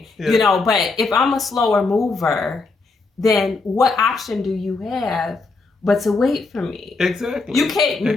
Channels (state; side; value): quieter; right; 3.9 dB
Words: but if I'm a slower mover, then what option do you have but to wait for me? Exactly. You can't